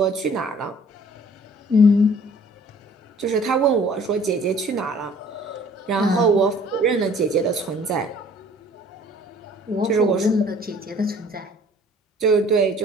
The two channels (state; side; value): normal; both; correlation 0.54